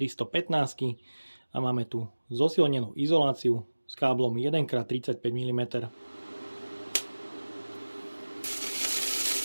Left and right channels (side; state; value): both; inverted; correlation -1.00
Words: a máme tu zosilnenú izoláciu s káblom 1x35 mm.